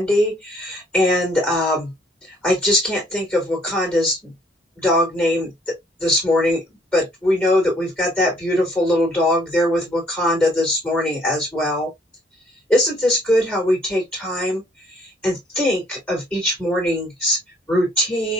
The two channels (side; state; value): both; normal; correlation 0.63